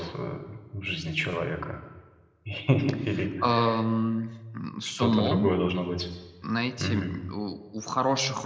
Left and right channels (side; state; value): both; identical; correlation 1.00